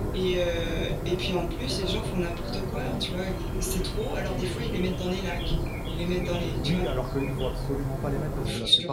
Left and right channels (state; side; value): identical; both; correlation 1.00